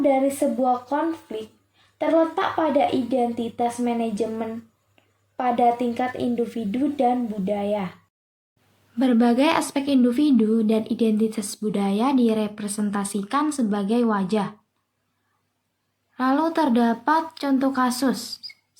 dari sebuah konflik terletak pada identitas manajemen pada tingkat individu dan budaya. Berbagai aspek individu dan identitas budaya direpresentasikan sebagai wajah. Lalu terdapat contoh kasus,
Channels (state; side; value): identical; both; correlation 1.00